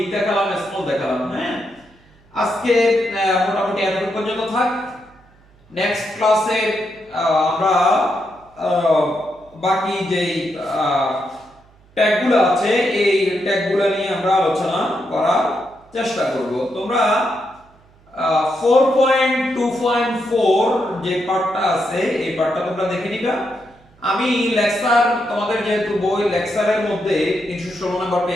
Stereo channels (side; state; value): right; noise; hum, 29 dB below the sound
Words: দেখালাম, স্মল দেখালাম। হ্যাঁ, আজকে মোটামুটি এতটুকু পর্যন্ত থাক। নেক্সট ক্লাসে আমরা বাকি যেই ট্যাগগুলো আছে এই ট্যাগগুলো নিয়ে আমরা আলোচনা করার চেষ্টা করব। তোমরা 4.2.4 যে পার্টটা আছে এই পার্টটা তোমরা দেখে নিবা। আমি লেকচার তোমাদের যেহেতু বই লেকচারের মধ্যে 316 নম্বর